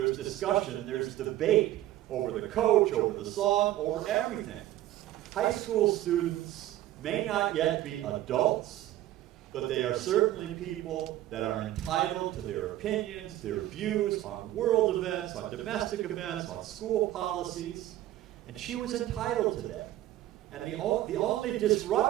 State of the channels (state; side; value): quieter; left; 14.3 dB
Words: discussion, there's debate over the coach, over the song, over everything. High school students may not yet be adults, but they are certainly people that are entitled to their opinions, their views on world events, on domestic events, on school policies, and she was entitled to that. And the only